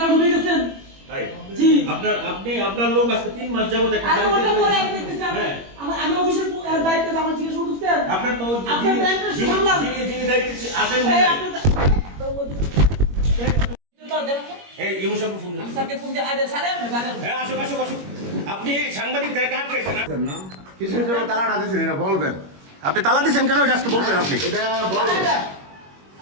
ঢুকে গেছেন। তাই? জি। আপনার লোক আজকে 3 মাস যাবত একটা আমি ওটা পরে আপনি দেখতেছেন। আমি অফিসের দায়িত্বে আমার জিজ্ঞেস করতেছেন। আপনার তো যিনি দায়িত্বে আছেন এই ইউসুফ ফোন দেন। স্যারকে ফোন দিয়ে আরে স্যার হ্যাঁ আসো। আপনি সাংবাদিকদের কাট পেয়েছেন না? কিসের জন্য তালাটা দিয়েছেন এটা বলবেন। আপনি তালা দিয়েছেন কেন এটা আজকে বলবেন আপনি? এটা বলবেন।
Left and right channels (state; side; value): late; left; 21 ms